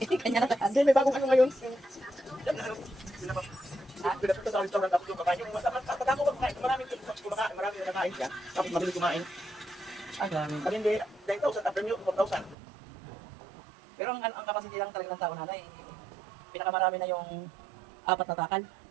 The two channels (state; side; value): drops out; left; at 12.6 s